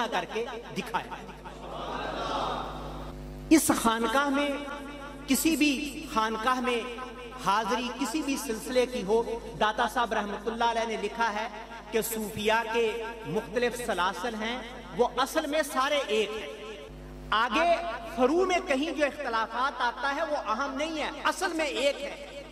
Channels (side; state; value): both; identical; correlation 1.00